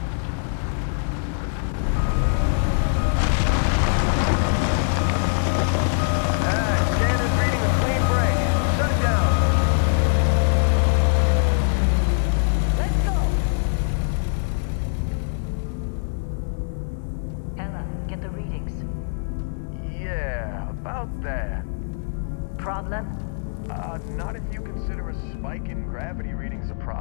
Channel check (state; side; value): silent; right; digital silence